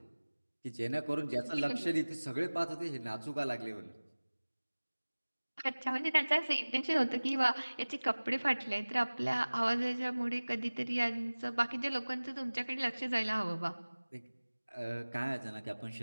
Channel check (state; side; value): inverted; both; correlation -1.00